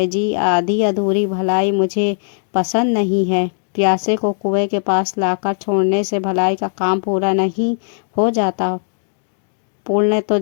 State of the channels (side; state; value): right; silent; digital silence